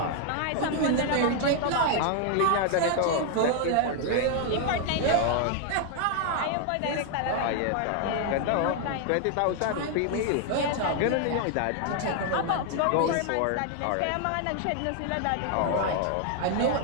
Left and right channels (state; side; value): different; both; correlation 0.00